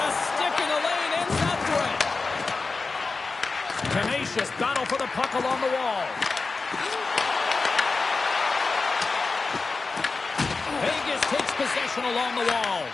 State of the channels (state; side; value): quieter; right; 4.0 dB